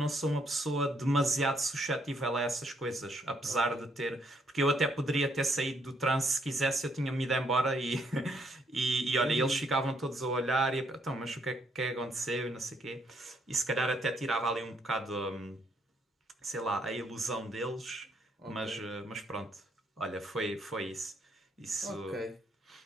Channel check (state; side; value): normal; both; correlation 0.71